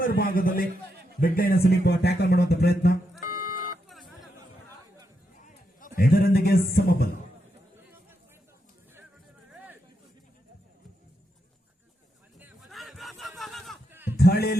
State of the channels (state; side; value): normal; both; correlation 0.83